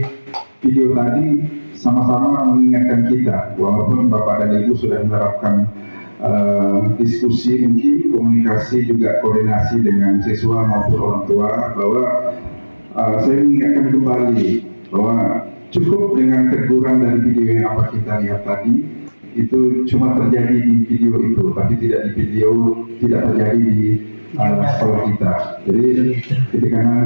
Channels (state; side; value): inverted; both; correlation -1.00